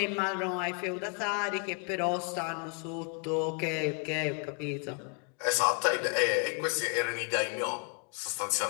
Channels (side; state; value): right; quieter; 37.1 dB